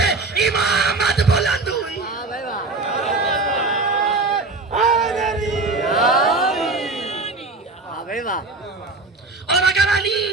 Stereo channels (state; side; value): quieter; left; 3.5 dB